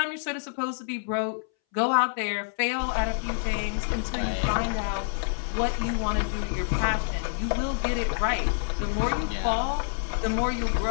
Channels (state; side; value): silent; right; 60 dB below the other